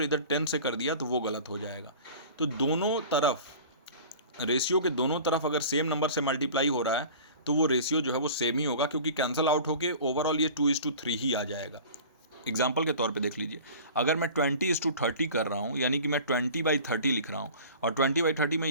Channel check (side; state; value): both; inverted; correlation -0.41